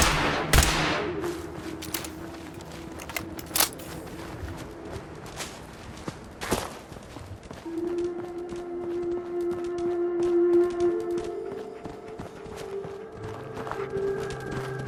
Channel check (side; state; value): both; identical; correlation 1.00